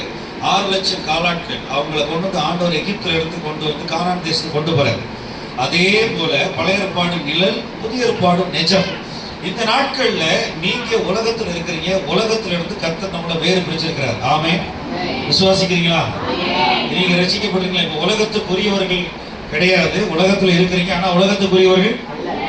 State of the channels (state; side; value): identical; both; correlation 1.00